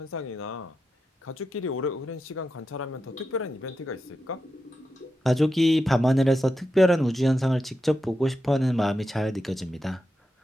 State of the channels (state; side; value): normal; both; correlation 0.88